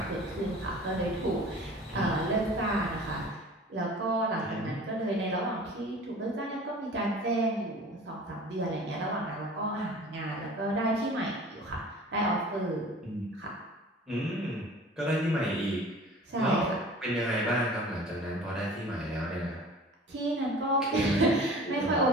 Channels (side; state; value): both; normal; correlation 0.43